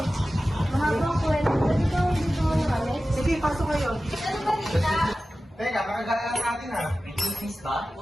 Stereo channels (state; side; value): normal; both; correlation 0.95